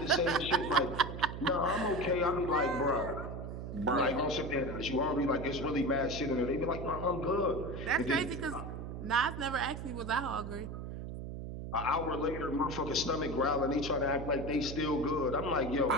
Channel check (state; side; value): noise; right; hum, 7 dB below the sound